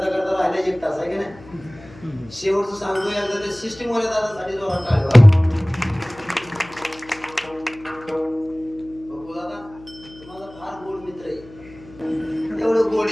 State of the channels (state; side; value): noise; left; hum, 21 dB below the sound